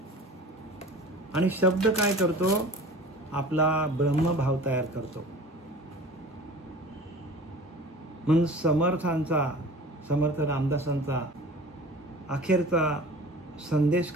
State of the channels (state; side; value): normal; both; correlation 0.41